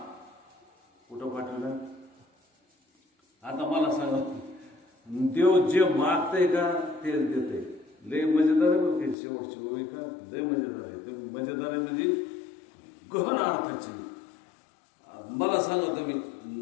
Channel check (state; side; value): drops out; right; at 9.2 s